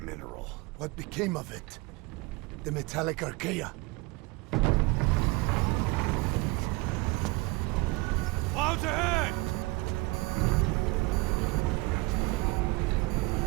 mineral. What became of it? The metallic archaea? Clouds ahead!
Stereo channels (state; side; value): quieter; left; 23.5 dB